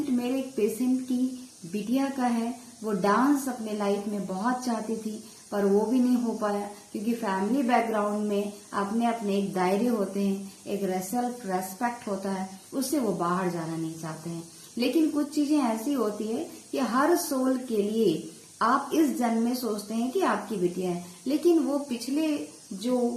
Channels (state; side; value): identical; both; correlation 1.00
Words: मेरे एक पेशेंट की बिटिया का है। वो डांस अपने लाइफ में बहुत चाहती थी पर वो भी नहीं हो पाया, क्योंकि फैमिली बैकग्राउंड में अपने अपने एक दायरे होते हैं, एक सेल्फ रेस्पेक्ट होता है, उससे वो बाहर जाना नहीं चाहते हैं। लेकिन कुछ चीजें ऐसी होती है कि हर सोल के लिए आप इस जन्म में सोचते हैं कि आपकी बिटिया है, लेकिन वो पिछले जो